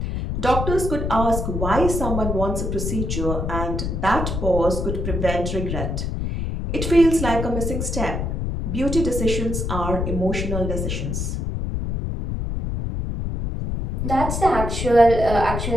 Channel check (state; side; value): noise; left; rumble, 2 dB below the sound